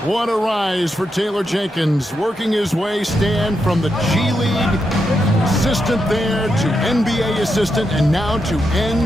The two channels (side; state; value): both; normal; correlation 0.84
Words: What a rise for Taylor Jenkins, working his way, Stan, from the G League assistant there to NBA assistant and now to